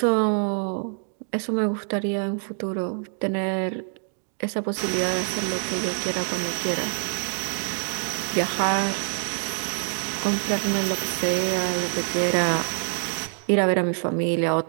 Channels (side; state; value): left; silent; digital silence